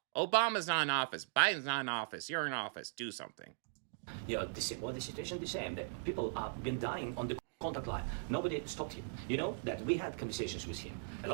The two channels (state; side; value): silent; left; digital silence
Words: Obama's not in office. Biden's not in office. You're in office. Do something. Yeah, the situation the same. That people have been dying on the contact line. Nobody stopped him. You know that we had conversations with him, a